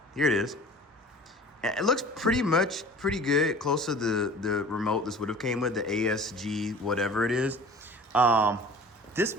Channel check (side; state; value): both; normal; correlation 0.43